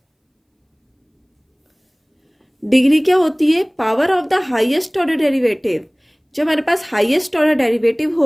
degree क्या होती है? Power of the highest order derivative. जब हमारे पास highest order derivative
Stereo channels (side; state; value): both; identical; correlation 1.00